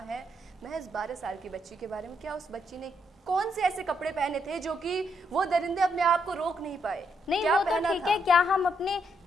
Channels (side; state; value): both; normal; correlation 0.76